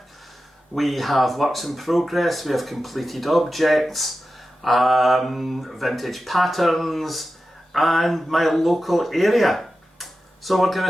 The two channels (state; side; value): normal; both; correlation 0.93